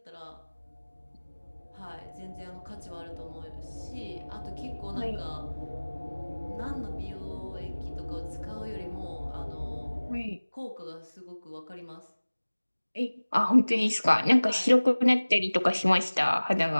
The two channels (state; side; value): inverted; both; correlation -1.00